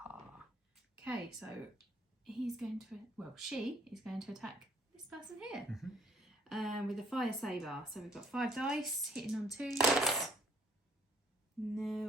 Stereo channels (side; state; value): both; normal; correlation 0.62